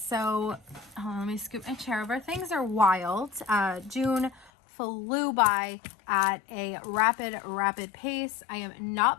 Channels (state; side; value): drops out; right; at 4.5 s